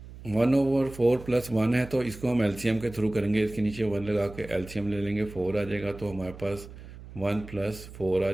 1/4 + 1 है तो इसको हम एलसीएम के थ्रू करेंगे। इसके नीचे 1 लगा के एलसीएम ले लेंगे, 4 आ जाएगा तो हमारे पास 1 + 4 आ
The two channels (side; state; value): right; noise; hum, 16 dB below the sound